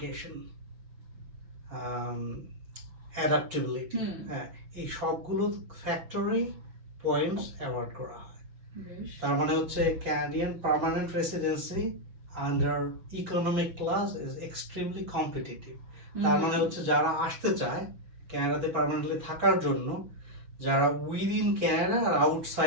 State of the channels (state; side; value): late; left; 6.2 ms